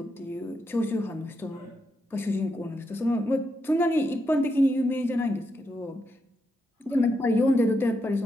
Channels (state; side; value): normal; both; correlation 0.82